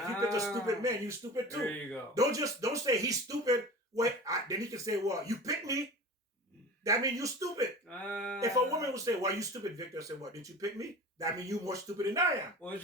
you picked a stupid man, you're stupid too. There you go. Don't say he's stupid. Wait, then he can say, well, you picked me. That means you're stupid. If a woman would say, well, you stupid, Victor, I say, well, didn't you pick me? That means you're more stupid than I am. Well,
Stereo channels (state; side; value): normal; both; correlation 0.36